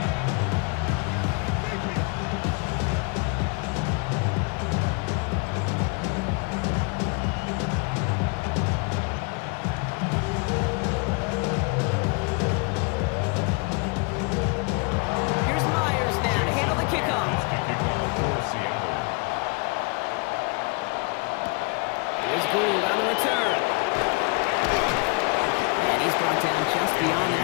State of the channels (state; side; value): quieter; right; 32.4 dB